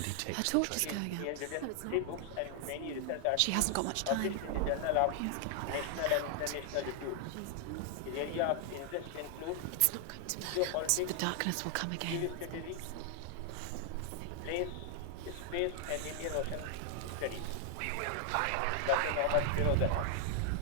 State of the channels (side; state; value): both; different; correlation 0.00